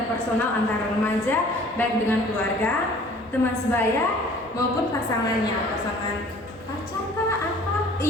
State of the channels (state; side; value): normal; both; correlation 0.51